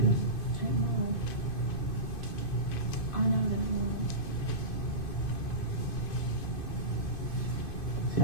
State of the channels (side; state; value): right; late; 2.5 ms